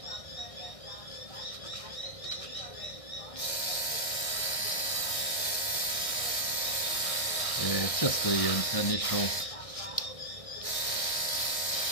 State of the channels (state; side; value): late; right; 1.6 ms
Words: it's just the initial